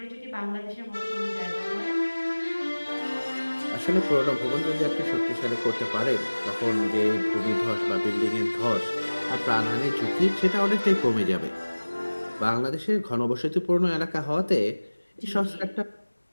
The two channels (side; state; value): both; inverted; correlation -1.00